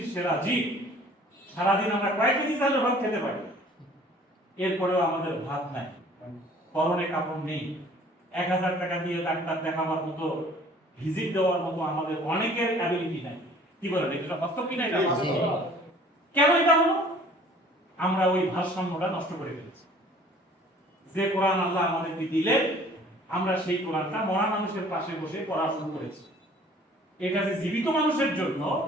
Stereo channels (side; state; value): both; normal; correlation 0.52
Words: সেরা জীব, সারাদিন আমরা কয়েক কেজি চালের ভাত খেতে পারি, এরপরেও আমাদের ভাত নাই, পরনে কাপড় নেই, 1000 টাকা দিয়ে ডাক্তার দেখাবার মতো, ভিজিট দেওয়ার মতো আমাদের অনেকের অ্যাবিলিটি নাই। কি বলেন, এটা বাস্তব কি না? এটা বাস্তব। কেন এটা হলো? আমরা ওই ভারসাম্যটা নষ্ট করে ফেলেছি। যে কোরআন আল্লাহ আমাদেরকে দিলেন, আমরা সেই কোরআনটা মরা মানুষের পাশে বসে পড়া শুরু করেছি। এটা যে জীবিত মানুষের জন্য,